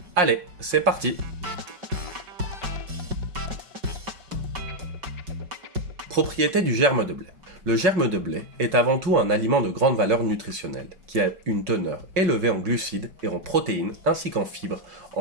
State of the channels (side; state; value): left; late; 5.5 ms